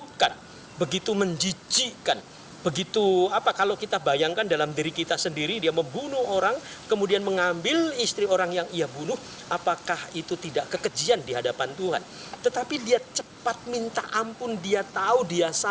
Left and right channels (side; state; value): both; identical; correlation 1.00